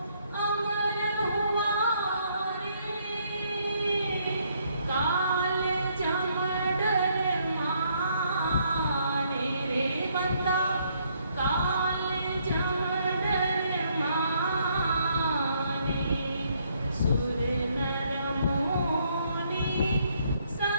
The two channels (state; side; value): inverted; both; correlation -0.70